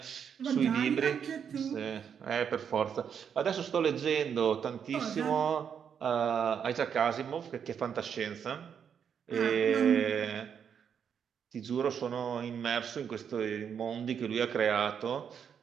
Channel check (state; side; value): quieter; left; 7.6 dB